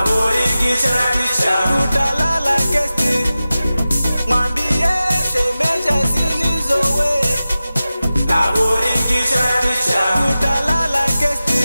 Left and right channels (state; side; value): inverted; both; correlation -0.95